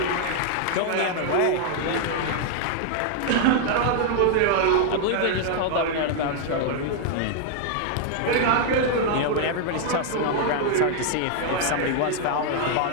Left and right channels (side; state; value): both; different; correlation 0.00